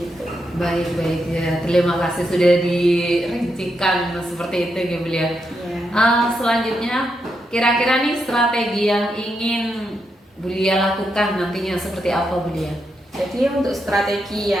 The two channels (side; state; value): both; normal; correlation 0.83